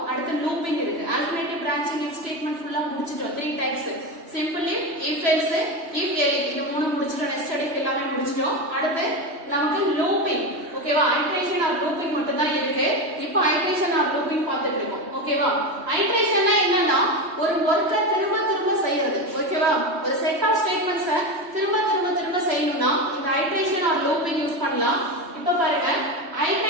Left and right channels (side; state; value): left; late; 3.2 ms